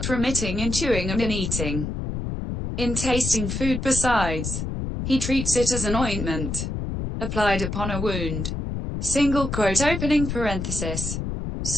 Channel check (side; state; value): left; noise; rumble, 3 dB below the sound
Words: remitting in chewing and in eating. In tasting food besides, he treats it as an ointment, applied upon a wound. Opening parenthesis.